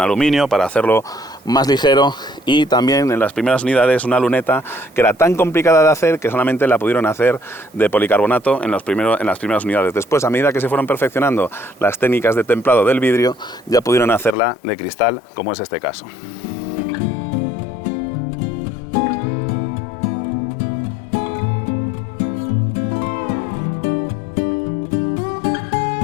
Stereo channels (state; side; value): drops out; right; at 14.4 s